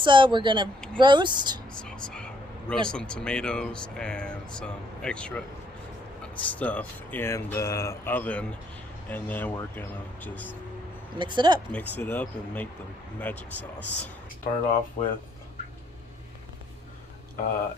We're going to roast. Salsa. Roast some tomatoes and some extra stuff in the oven. And then we're going to just mix it up and make the magic sauce. Start off with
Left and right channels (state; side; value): normal; both; correlation 0.70